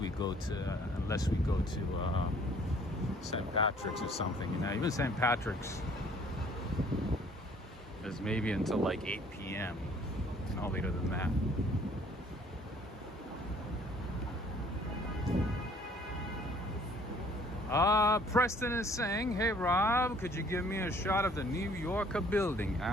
we go to St. Patrick's or something. You know, even St. Patrick's is maybe until like 8 p.m. No later than that. Preston is saying, hey Rob, could you give me a shot of the New Yorker building?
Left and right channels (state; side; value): normal; both; correlation 0.57